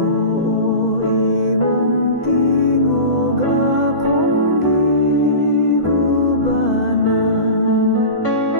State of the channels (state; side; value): late; right; 2.0 ms